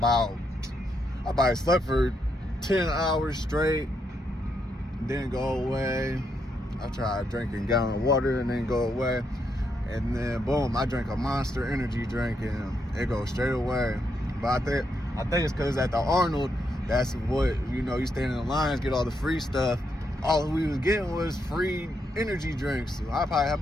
for 10 hours straight. Didn't go away. I tried drinking a gallon of water and didn't go away. And then boom, I drank a Monster energy drink and it goes straight away. But I think it's because at the Arnold, that's what, you stand in the lines, get all the free stuff. All we was getting was free energy drinks. So I probably have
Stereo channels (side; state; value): both; normal; correlation 0.79